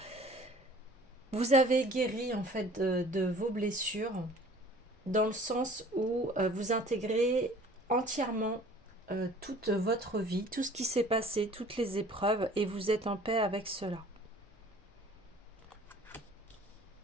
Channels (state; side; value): normal; both; correlation 0.49